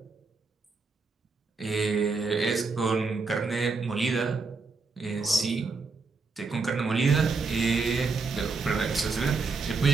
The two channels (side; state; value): left; quieter; 4.2 dB